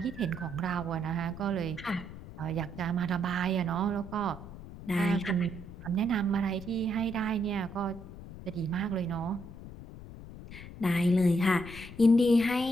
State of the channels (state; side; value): noise; left; rumble, 14 dB below the sound